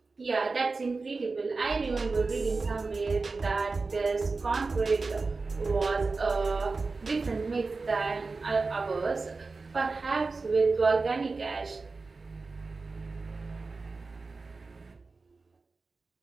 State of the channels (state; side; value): quieter; left; 4.0 dB